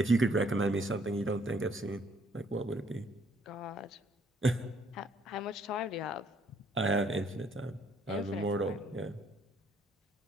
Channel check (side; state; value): both; normal; correlation 0.65